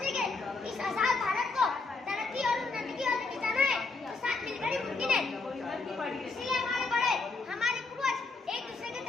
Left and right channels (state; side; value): quieter; right; 3.8 dB